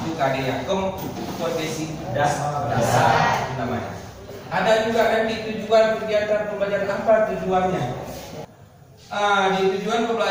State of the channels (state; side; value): identical; both; correlation 1.00